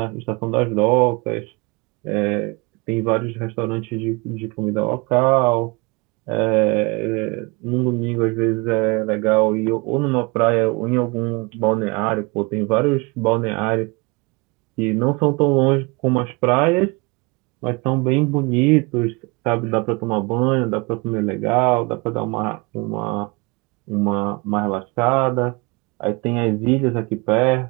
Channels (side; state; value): left; quieter; 27.5 dB